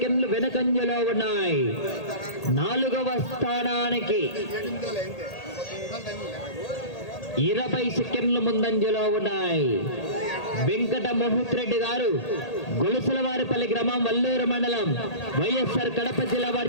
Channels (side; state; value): right; late; 1.8 ms